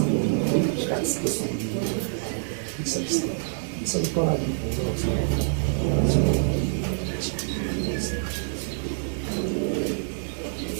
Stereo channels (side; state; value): left; silent; digital silence